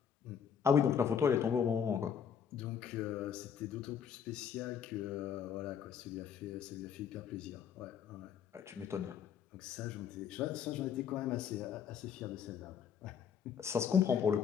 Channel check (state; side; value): quieter; right; 7.8 dB